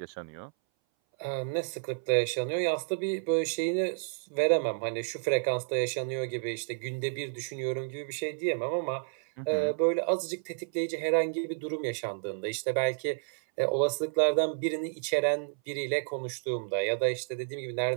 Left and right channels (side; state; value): left; silent; 57 dB below the other